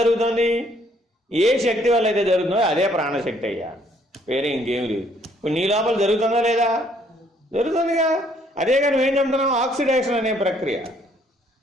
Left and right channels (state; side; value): normal; both; correlation 0.65